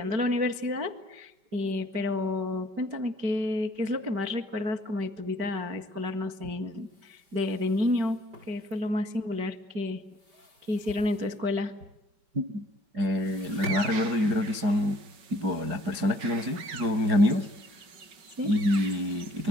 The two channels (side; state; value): left; late; 5.2 ms